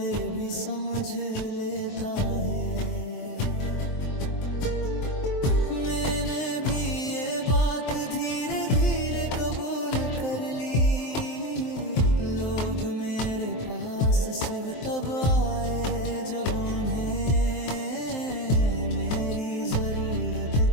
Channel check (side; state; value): right; late; 23 ms